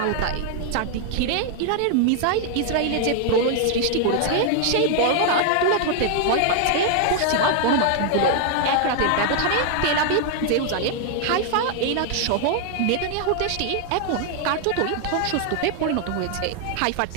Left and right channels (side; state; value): both; different; correlation 0.00